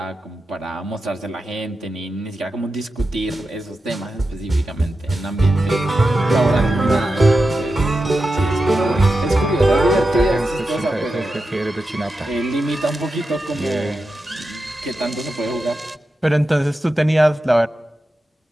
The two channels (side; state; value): both; normal; correlation 0.90